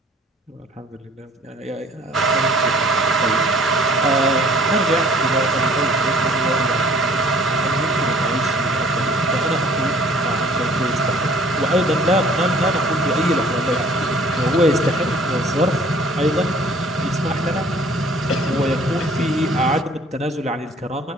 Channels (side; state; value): both; normal; correlation 0.54